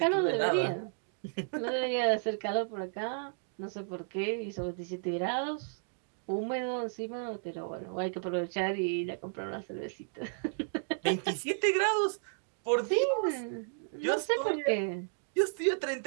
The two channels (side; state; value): left; silent; digital silence